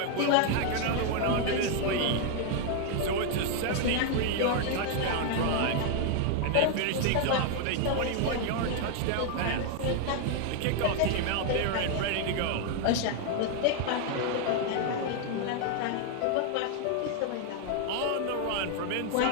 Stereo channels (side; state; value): both; different; correlation 0.00